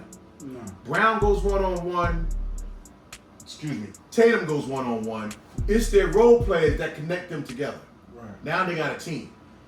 No. Brown goes one-on-one. Tatum goes one-on-one. It's their role players that connect them together. Right. Now they got a team.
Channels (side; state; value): both; identical; correlation 1.00